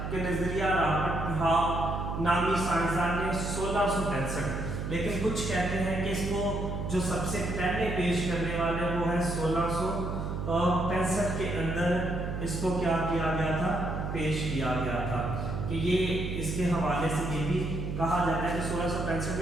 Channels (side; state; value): right; noise; hum, 4 dB below the sound